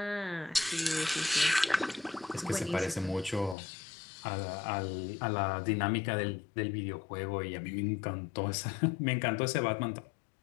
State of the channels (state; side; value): drops out; right; at 3.6 s